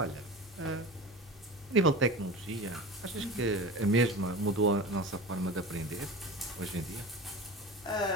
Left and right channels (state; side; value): normal; both; correlation 0.32